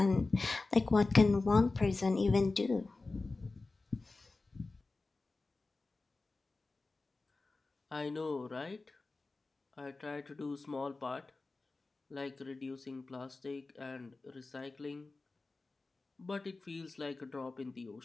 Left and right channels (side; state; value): right; quieter; 3.5 dB